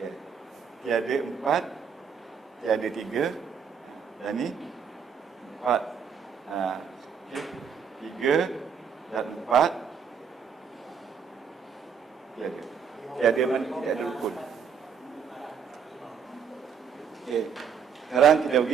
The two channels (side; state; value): left; quieter; 6.8 dB